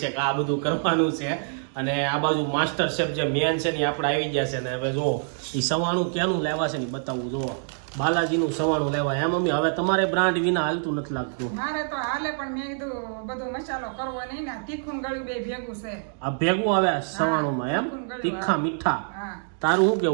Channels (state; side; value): silent; left; digital silence